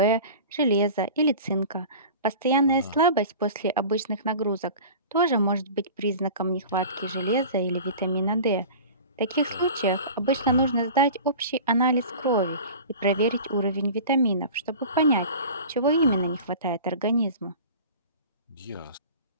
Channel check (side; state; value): both; inverted; correlation -0.38